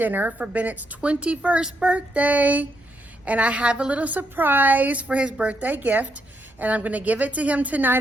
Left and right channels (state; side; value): normal; both; correlation 0.78